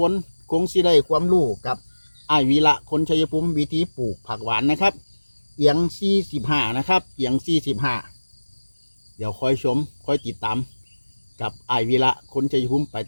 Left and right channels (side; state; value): both; inverted; correlation -1.00